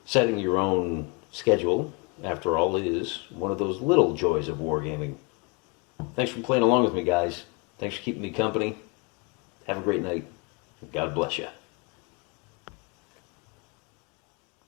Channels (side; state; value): right; quieter; 31.8 dB